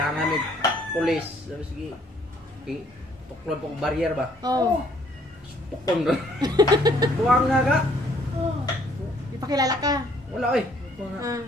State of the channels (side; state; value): both; normal; correlation 0.63